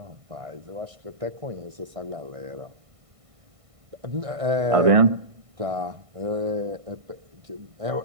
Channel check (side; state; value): left; late; 1.5 ms